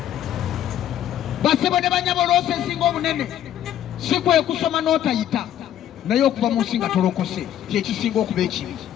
Basebo ne banyabo loosi esinga obunene si kwe kusoma n'otayita, naye okuva mu nsi nga tolokose kyekisinga okuba ekibi.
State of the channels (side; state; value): right; quieter; 11.2 dB